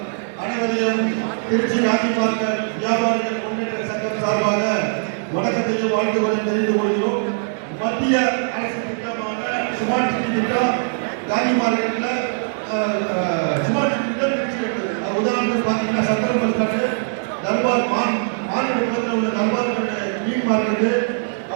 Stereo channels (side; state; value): left; silent; digital silence